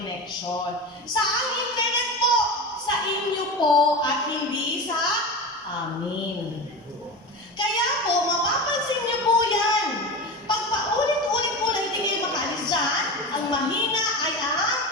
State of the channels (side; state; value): both; normal; correlation 0.26